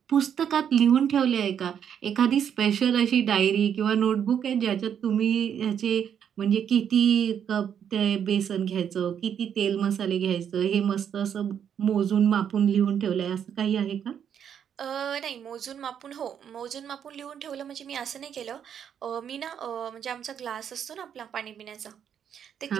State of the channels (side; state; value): left; quieter; 8.5 dB